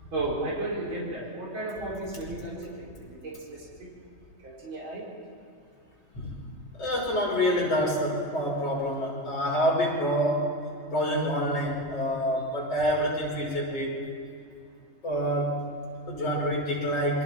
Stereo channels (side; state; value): right; late; 3.3 ms